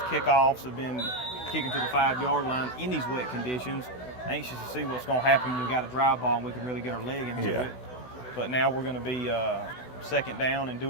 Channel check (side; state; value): right; late; 16 ms